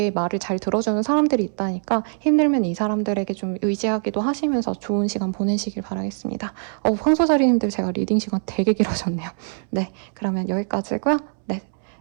말을 잘 들어주는 사람들이 있다니까 힘들면 이 사람들에게 좀 의지하기도 하시면서 좋은 시간 보내시길 바라겠습니다. 황소자리님들 제가 리딩 시간 되게 길어졌네요. 네, 그러면 여기까지고요. 네,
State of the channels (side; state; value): left; silent; 64 dB below the other